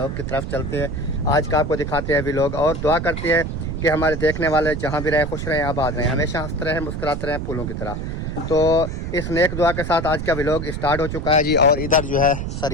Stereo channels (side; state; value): right; noise; rumble, 4 dB below the sound